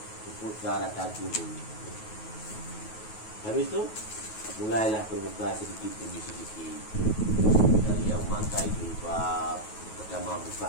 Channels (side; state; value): right; late; 9.3 ms